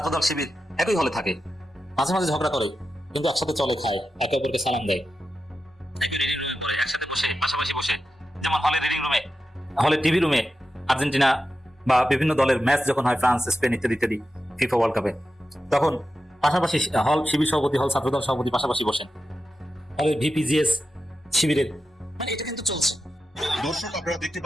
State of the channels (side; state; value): both; normal; correlation 0.91